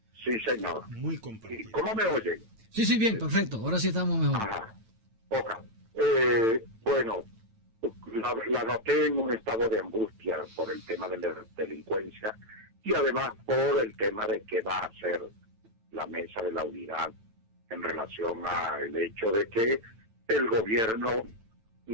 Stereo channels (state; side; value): late; left; 9.0 ms